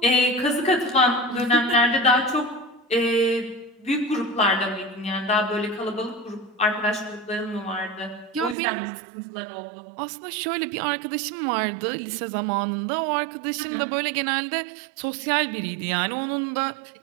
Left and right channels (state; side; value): drops out; left; at 8.6 s